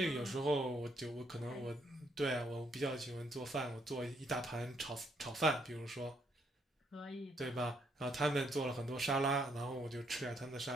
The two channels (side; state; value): both; normal; correlation 0.72